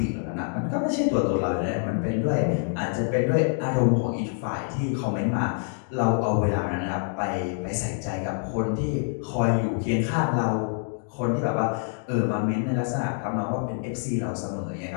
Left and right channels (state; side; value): silent; right; 58 dB below the other